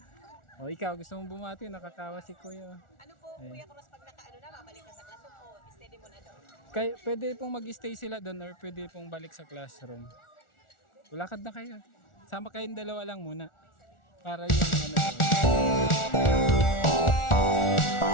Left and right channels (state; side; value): late; right; 1.4 ms